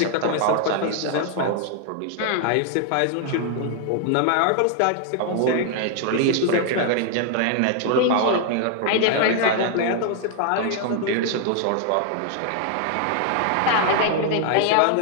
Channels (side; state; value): both; different; correlation 0.00